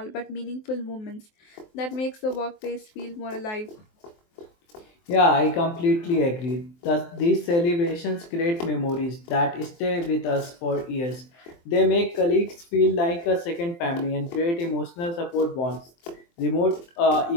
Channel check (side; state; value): right; late; 23 ms